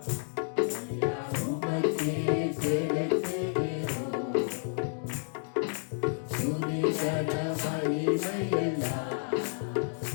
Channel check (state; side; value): silent; right; 57 dB below the other